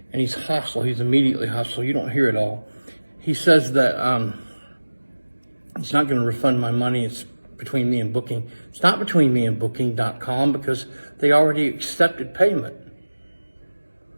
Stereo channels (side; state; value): both; inverted; correlation -1.00